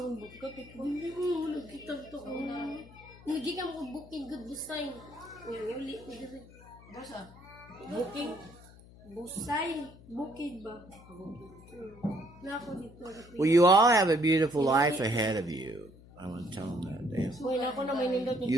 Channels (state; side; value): noise; left; hum, 21 dB below the sound